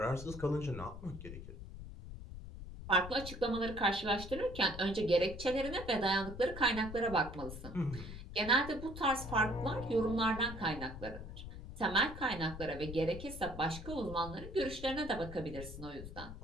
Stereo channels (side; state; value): left; noise; rumble, 11 dB below the sound